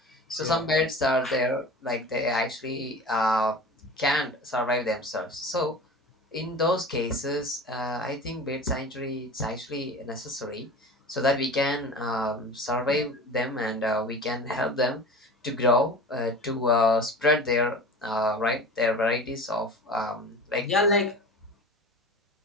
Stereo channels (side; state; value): both; normal; correlation 0.36